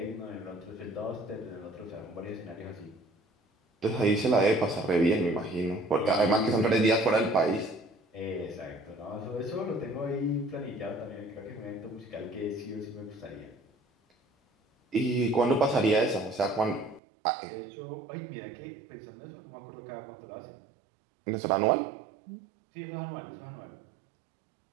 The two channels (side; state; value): left; drops out; at 17.0 s